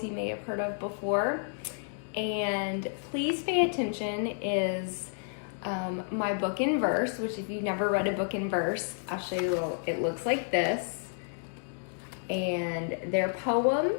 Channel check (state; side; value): silent; right; digital silence